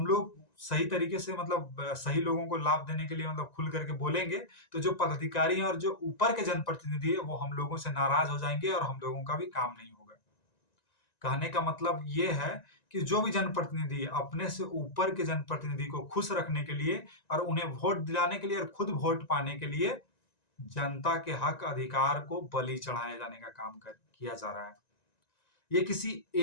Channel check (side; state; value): right; late; 1.9 ms